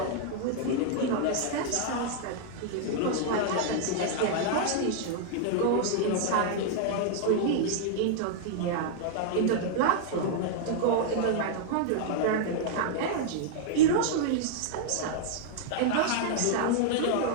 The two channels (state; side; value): different; both; correlation -0.01